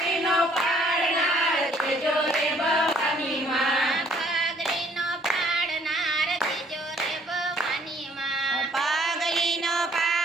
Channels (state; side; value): normal; both; correlation 0.62